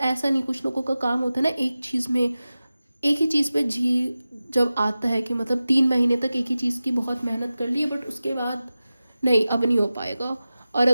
ऐसा नहीं, कुछ लोगों का काम होता है ना एक चीज़ में, एक ही चीज़ पे जब आता है कि मतलब 3 महीने तक एक ही चीज़ की बहुत मेहनत कर ली है, बट उसके बाद नहीं, अब नहीं हो पाएगा, और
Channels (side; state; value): both; inverted; correlation -0.95